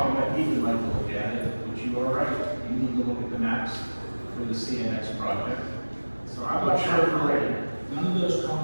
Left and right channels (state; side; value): inverted; both; correlation -1.00